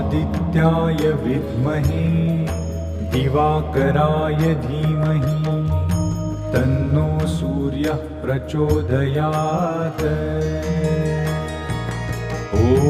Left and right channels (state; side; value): identical; both; correlation 1.00